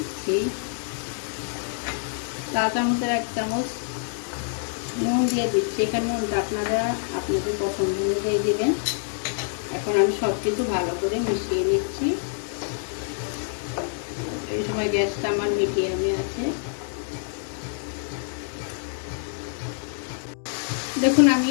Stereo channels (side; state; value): right; silent; digital silence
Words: চা চামচের 1 চামচ নুন দিয়ে দিচ্ছি। এখানে নুনটা আপনারা আপনাদের পছন্দ অনুযায়ী দেবেন। এখন আমি সব কিছু ভালো করে মিশিয়ে নিচ্ছি। এই সময় গ্যাসটা আমার মিডিয়ামে আছে। দেখুন